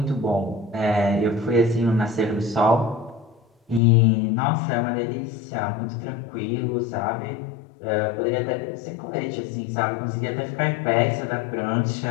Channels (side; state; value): right; drops out; at 3.8 s